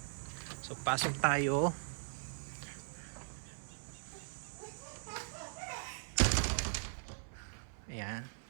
So, pasok tayo. Ayan.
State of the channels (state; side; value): silent; left; 51 dB below the other